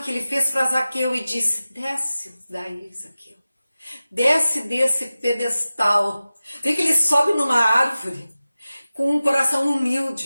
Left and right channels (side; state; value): both; inverted; correlation -0.96